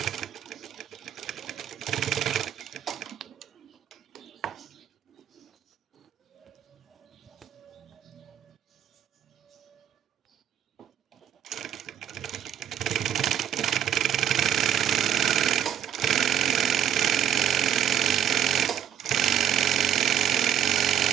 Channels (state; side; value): quieter; left; 9.9 dB